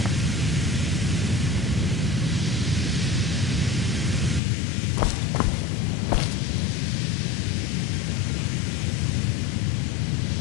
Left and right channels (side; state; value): right; drops out; at 4.4 s